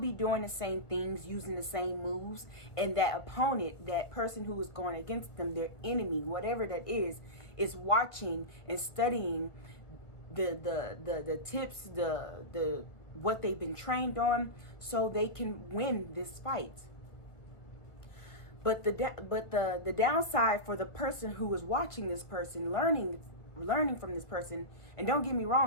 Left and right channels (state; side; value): late; right; 1.3 ms